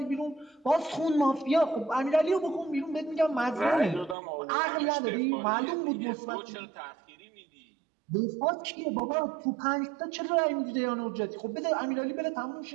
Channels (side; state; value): left; drops out; at 4.2 s